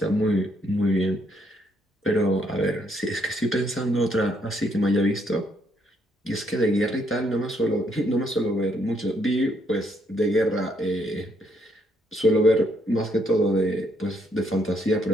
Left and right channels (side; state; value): both; normal; correlation 0.72